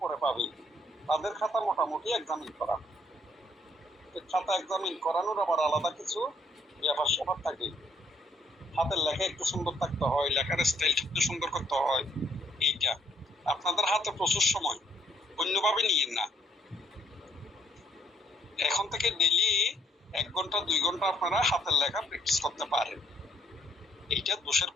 পাবে, তাদের খাতা মোটামুটি এক্সামিন করা। খাতা এক্সামিন করানোর আবার আলাদা কিছু ব্যাপার স্যাপার থাকে। হাতের লেখা একটু সুন্দর থাকতে হয়, লেখার স্টাইল একটু সুন্দর করতে হয়। এইটা আপনাদের হাতে প্রচুর সময়, অন্যভাবে নিয়েন না। এখন থেকে ডেইলি 1 ঘন্টা 2 ঘন্টা আপনারা হাতের লেখা প্র্যাকটিস করতে পারেন। এইটা দোষের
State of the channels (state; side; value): normal; both; correlation 0.68